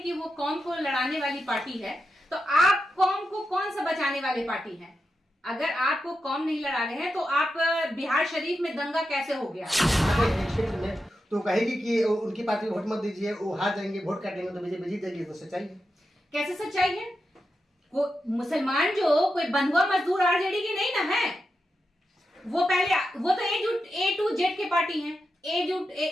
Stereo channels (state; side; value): normal; both; correlation 0.88